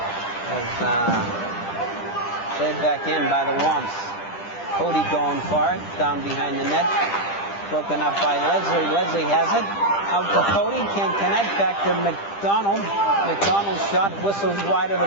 As played back in by the Womps. Cody going for it, down behind the net. Broken up by Leslie. Leslie has it. Out to Cody, can't connect. Back to McDonald. McDonald's shot whistles wide of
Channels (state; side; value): late; right; 10 ms